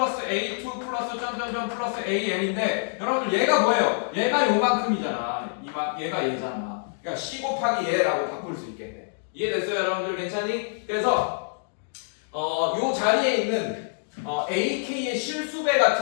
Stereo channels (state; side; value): silent; right; digital silence